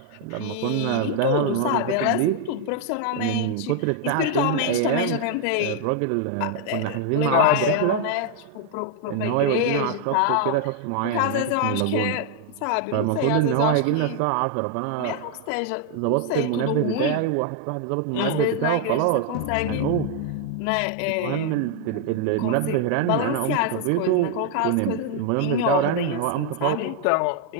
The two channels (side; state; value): both; different; correlation 0.00